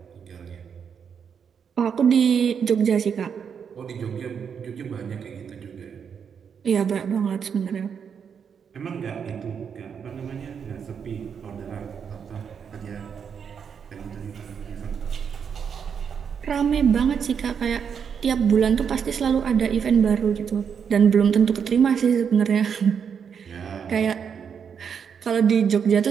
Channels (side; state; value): left; quieter; 7.1 dB